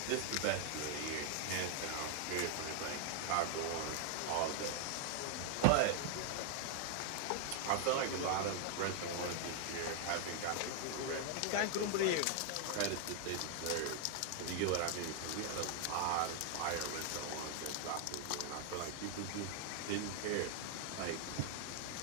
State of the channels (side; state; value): both; different; correlation 0.00